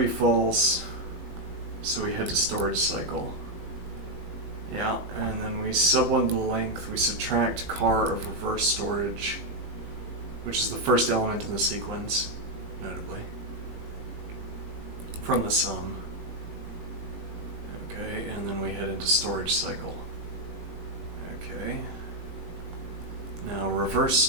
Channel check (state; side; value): late; left; 19 ms